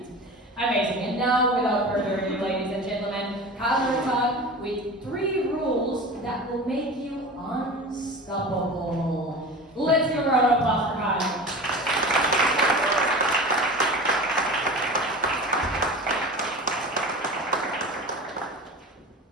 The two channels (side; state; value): both; normal; correlation 0.33